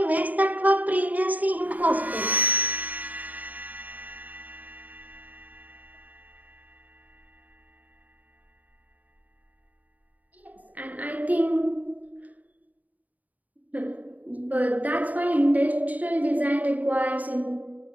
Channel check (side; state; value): left; late; 0.076 ms